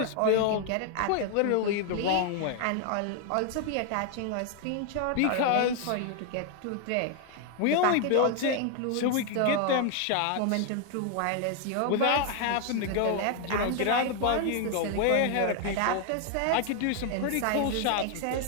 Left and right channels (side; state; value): both; different; correlation 0.00